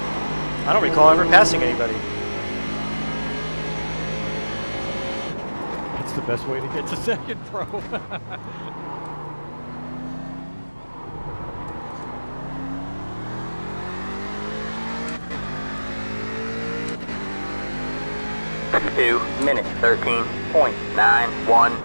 I don't recall ever passing anybody. It's the best way to get to second, bro. Two minutes,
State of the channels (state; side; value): inverted; both; correlation -1.00